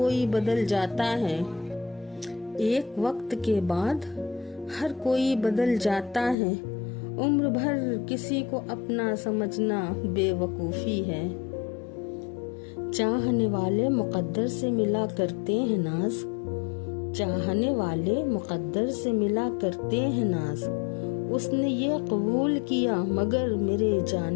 बदल जाता है, एक वक्त के बाद हर कोई बदल जाता है, उम्र भर किसी को अपना समझना बेवकूफ़ी है। चाहने वाले मुकद्दर से मिला करते हैं नाज, चाहने वाले मुकद्दर से मिला करते हैं नाज। उसने ये कबूल किया मगर मेरे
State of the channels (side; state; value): right; drops out; at 6.4 s